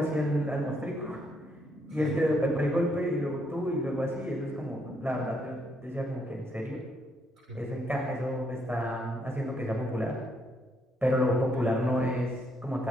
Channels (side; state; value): both; normal; correlation 0.74